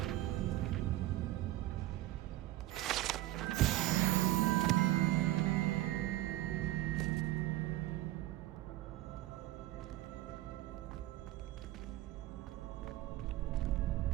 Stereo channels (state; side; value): quieter; left; 16.0 dB